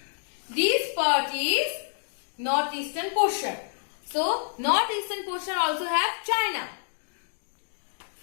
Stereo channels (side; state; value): right; silent; digital silence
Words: part is northeastern portion. So, northeastern portion also have China.